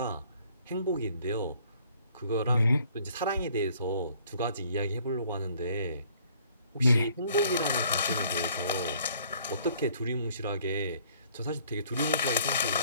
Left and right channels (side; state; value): both; inverted; correlation -0.59